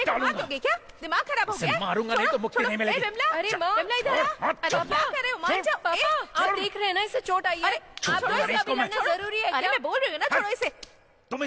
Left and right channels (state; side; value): identical; both; correlation 1.00